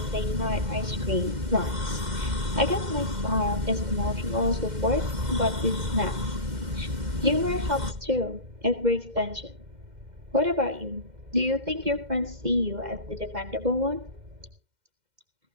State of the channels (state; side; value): late; left; 2.1 ms